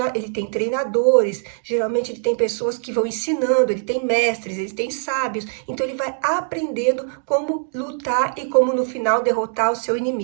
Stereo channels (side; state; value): left; silent; digital silence